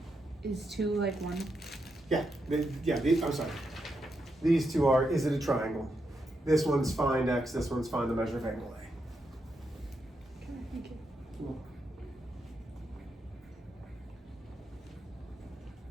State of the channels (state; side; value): normal; both; correlation 0.83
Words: Is 2 like 1? Yeah. I'm sorry. These 2 are, is it a triangle? This one's find x, this one's find the measure of angle A. Okay, thank you. Cool.